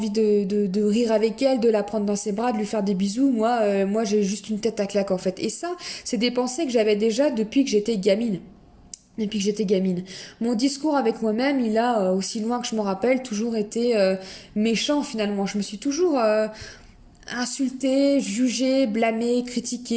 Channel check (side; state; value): both; identical; correlation 1.00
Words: rire avec elle, de la prendre dans ses bras, de lui faire des bisous. Moi, j'ai juste une tête à claque, en fait. Et ça, c'est des pensées que j'avais déjà depuis que j'étais gamine. Mon discours avec moi-même, il a, aussi loin que je me rappelle, toujours été méchant, finalement. Je me suis toujours insulté, jugé, blâmé,